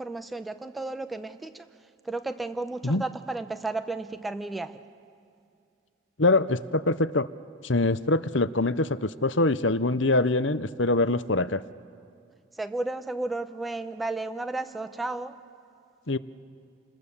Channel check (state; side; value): normal; both; correlation 0.11